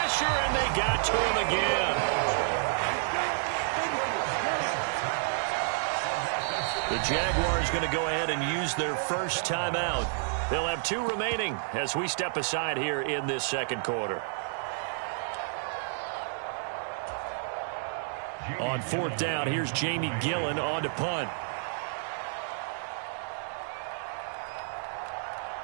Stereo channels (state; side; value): silent; left; digital silence